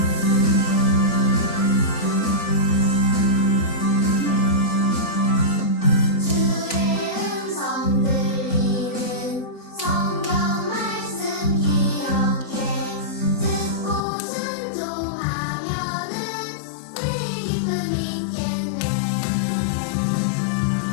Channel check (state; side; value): drops out; right; at 14.1 s